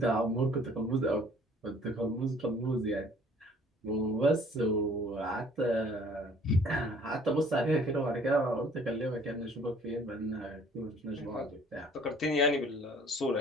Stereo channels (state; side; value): normal; both; correlation 0.55